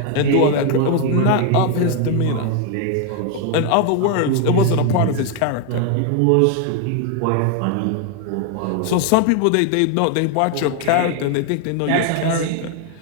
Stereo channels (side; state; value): both; different; correlation 0.01